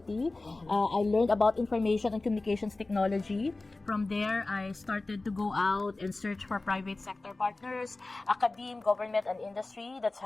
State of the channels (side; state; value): right; quieter; 3.2 dB